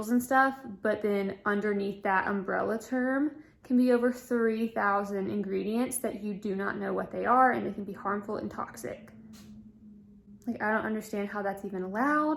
and stuff, but then underneath that umbrella term can be over 3,000 ingredients that you do not know what they are, and they can be harmful and toxic. Like, I don't understand how that's even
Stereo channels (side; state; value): both; identical; correlation 1.00